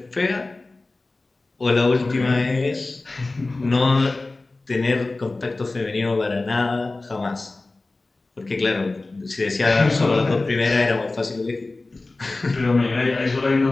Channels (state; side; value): quieter; right; 3.2 dB